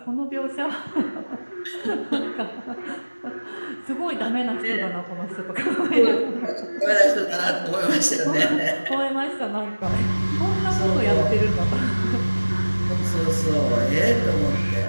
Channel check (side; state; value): both; inverted; correlation -1.00